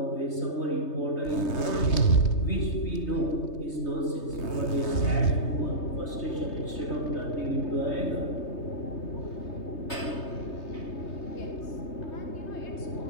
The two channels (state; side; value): late; right; 3.2 ms